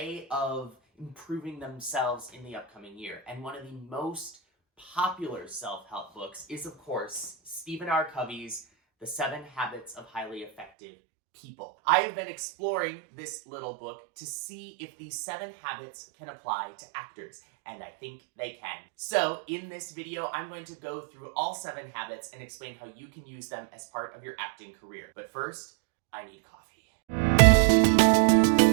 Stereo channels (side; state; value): left; drops out; at 10.7 s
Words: of improving themselves in the upcoming year. And one of the most popular self-help books is, of course, Stephen R. Covey's The 7 Habits of Highly Effective People. I have been exploring this little book to see if these 7 habits can apply to actors, and I think they can. So in this video, I'm going to go through all 7 habits and explain how you can use them as part of your acting career. But first, I need coffee.